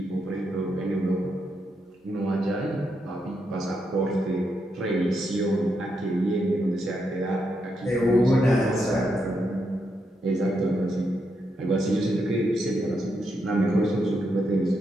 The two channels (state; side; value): normal; both; correlation 0.81